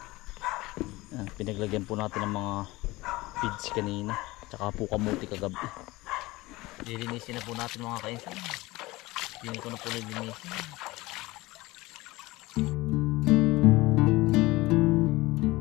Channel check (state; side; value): quieter; right; 20.4 dB